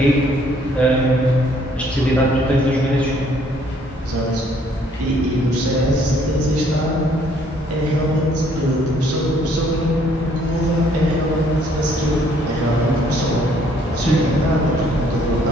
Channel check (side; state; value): both; normal; correlation 0.63